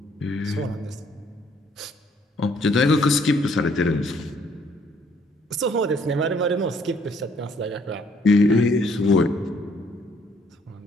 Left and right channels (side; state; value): both; normal; correlation 0.65